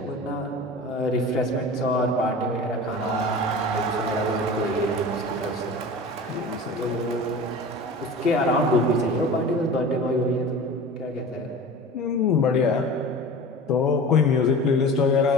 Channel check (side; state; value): both; normal; correlation 0.36